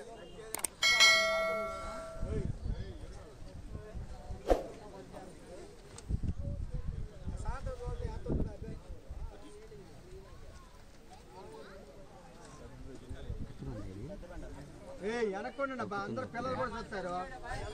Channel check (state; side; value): identical; both; correlation 1.00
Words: వెనక్కోండి అబ్బా, అందరూ పిల్లలు కూడా చూస్తారు.